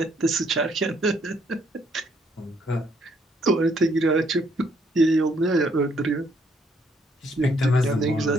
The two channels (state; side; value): normal; both; correlation 0.69